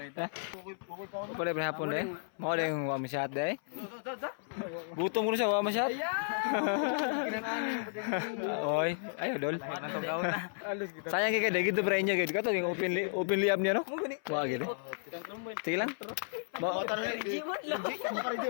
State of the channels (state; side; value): silent; right; 55 dB below the other